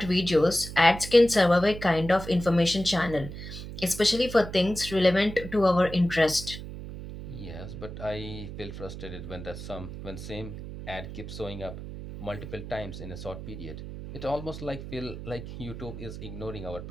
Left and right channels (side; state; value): right; noise; hum, 10 dB below the sound